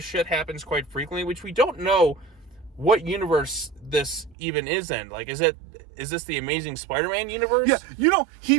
shit happens quite frequently, which we don't know what universe this even is in. Like, is this the Amazing Spider-Man universe? Yeah,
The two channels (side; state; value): left; drops out; at 4.4 s